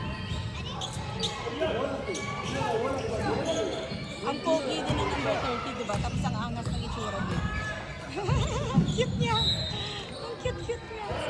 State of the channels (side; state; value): both; identical; correlation 1.00